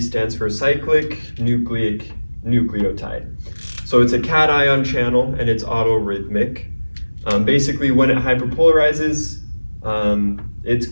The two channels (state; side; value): inverted; both; correlation -1.00